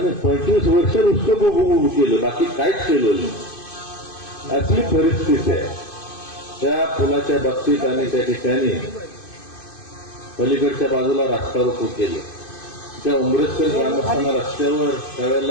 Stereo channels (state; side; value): late; right; 2.5 ms